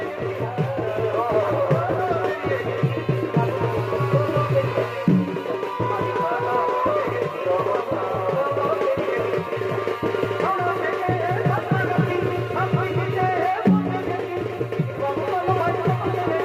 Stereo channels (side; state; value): both; identical; correlation 1.00